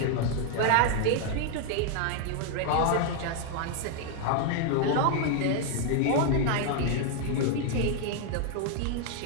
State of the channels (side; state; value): both; different; correlation 0.00